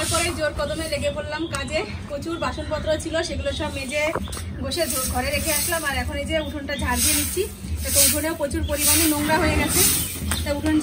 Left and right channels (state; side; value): identical; both; correlation 1.00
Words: পরে জোর কদমে লেগে পড়লাম কাজে। প্রচুর বাসনপত্র ছিল, সেগুলো সব মেজে বসে ঘরে রেখে আসলাম। আর এখন এই যে উঠোনটা ঝাড় দিয়ে নিচ্ছি। তো উঠোনেও প্রচুর পরিমাণে নোংরা হয়ে গেছে, তা উঠোন